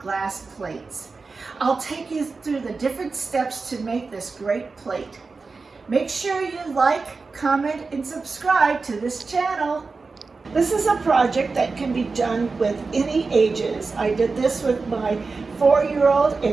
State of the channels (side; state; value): left; quieter; 4.2 dB